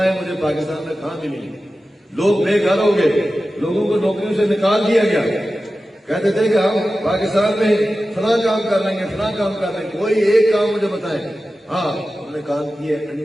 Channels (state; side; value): normal; both; correlation 0.94